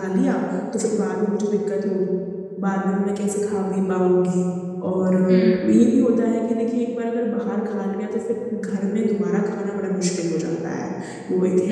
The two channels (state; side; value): identical; both; correlation 1.00